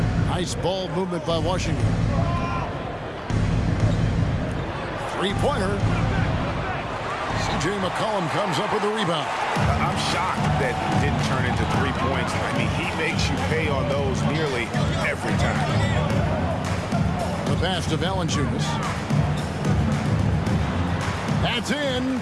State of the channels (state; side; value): identical; both; correlation 1.00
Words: Nice ball movement by Washington. Three-pointer. C.J. McCollum comes up with the rebound. I'm shocked that didn't turn into 3 points. I mean, he makes you pay on those nearly every time. The pass to Valanciunas. That's in.